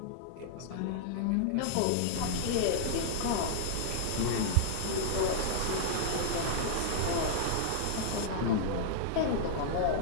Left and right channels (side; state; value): both; different; correlation -0.01